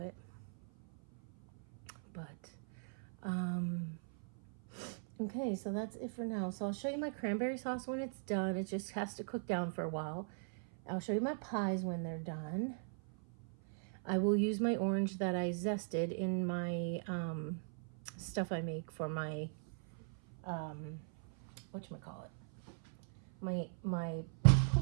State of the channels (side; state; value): left; silent; 52 dB below the other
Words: But okay, so that's it for now. So I'll show you my cranberry sauce when it's done. It just has to cook down for a while. I'll show you my pies when they're done. I will use my orange that I zested in my stuff I make for my whatchamacallit, my